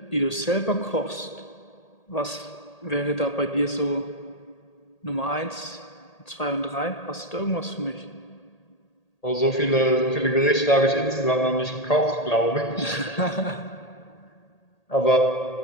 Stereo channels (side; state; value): right; late; 1.8 ms